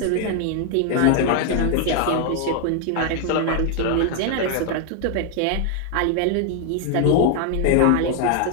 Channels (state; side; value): different; both; correlation 0.00